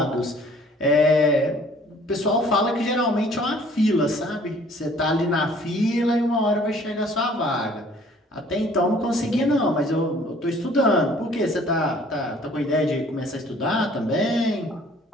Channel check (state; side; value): normal; both; correlation 0.55